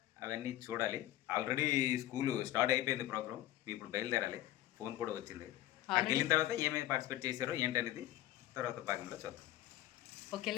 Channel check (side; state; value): right; quieter; 14.6 dB